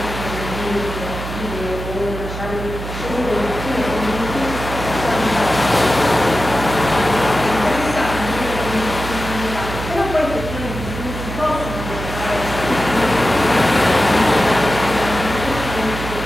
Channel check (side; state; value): right; noise; hum, 8 dB below the sound